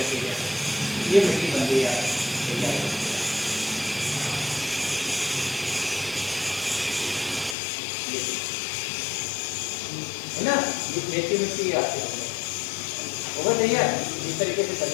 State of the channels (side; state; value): right; drops out; at 7.6 s